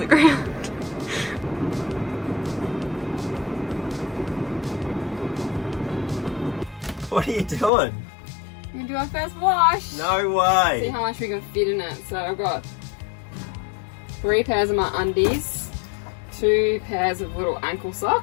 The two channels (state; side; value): drops out; right; at 7.7 s